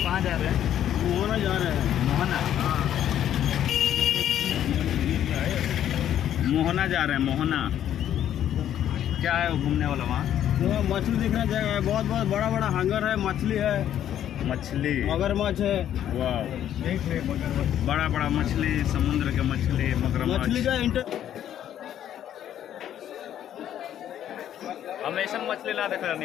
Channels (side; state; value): right; quieter; 10.8 dB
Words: कहाँ जा रहे हैं? मोहना जा रहे हैं। मोहना? हाँ। मोहना जा रहे हैं। मोहना क्या है वो घूमने वाला वहाँ? तो मछली दिखने जगह है, बहुत बहुत बड़ा बड़ा हंगर है, मछली है, मछली, मगरमच्छ है। वाह, बड़ा बड़ा मछली, समुद्र के मछली, मगरमच्छ। मछली का हम ऐसा मछली ना देख